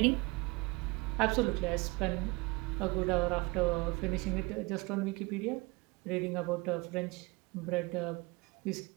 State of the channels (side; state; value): left; quieter; 24.7 dB